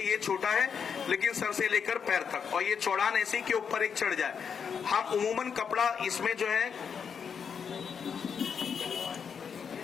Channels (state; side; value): quieter; right; 6.8 dB